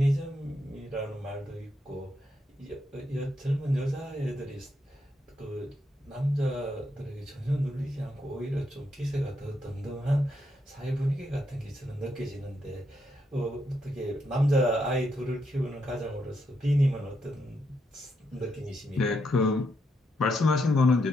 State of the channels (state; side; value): normal; both; correlation 0.80